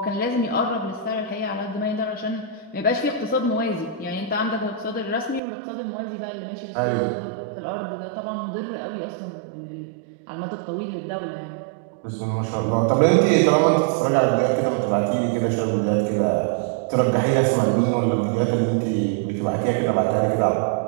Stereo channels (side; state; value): left; drops out; at 5.4 s